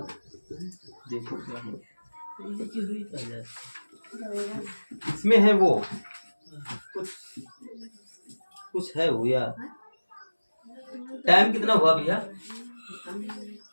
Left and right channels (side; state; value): both; inverted; correlation -1.00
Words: देखो क्या है इसमें, है वो कुछ है वो यार। टाइम कितना हुआ भैया?